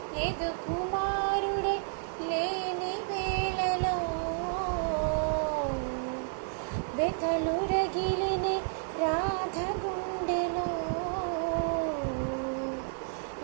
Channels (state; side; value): silent; left; digital silence